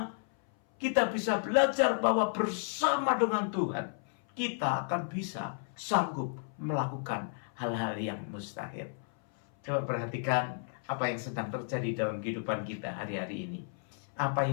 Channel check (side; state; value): right; silent; 56 dB below the other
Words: kita bisa belajar bahwa bersama dengan Tuhan kita akan bisa sanggup melakukan hal-hal yang mustahil. Coba perhatikan apa yang sedang terjadi dalam kehidupan kita hari-hari ini. Apa